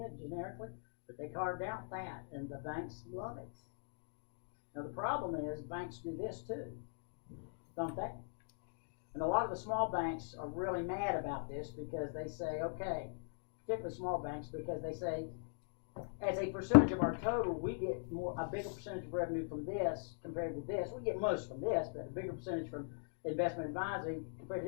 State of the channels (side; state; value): right; silent; digital silence